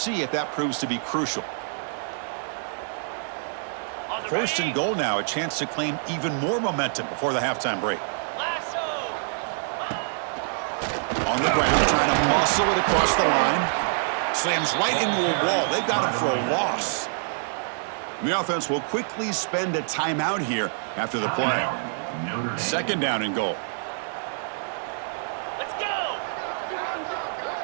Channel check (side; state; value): left; silent; digital silence